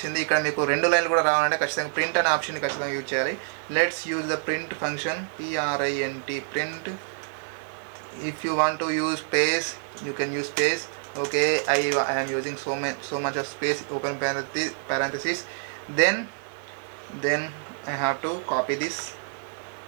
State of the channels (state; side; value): silent; left; digital silence